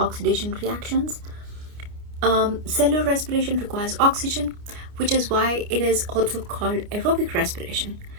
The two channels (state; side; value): late; left; 29 ms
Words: reactions. Cellular respiration requires oxygen, which is why it is also called aerobic respiration.